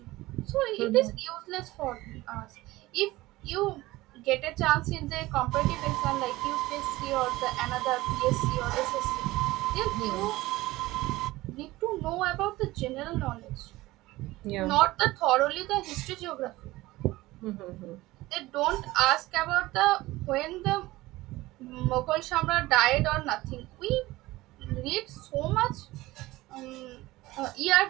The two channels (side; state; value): left; quieter; 18.6 dB